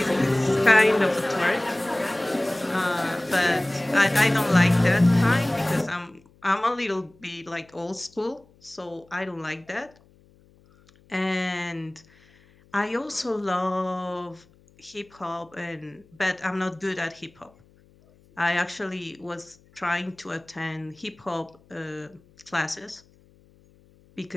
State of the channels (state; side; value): noise; left; hum, 29 dB below the sound